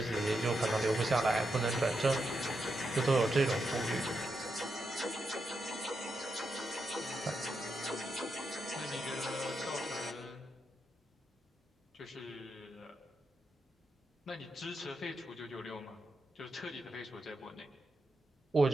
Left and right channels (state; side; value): normal; both; correlation 0.84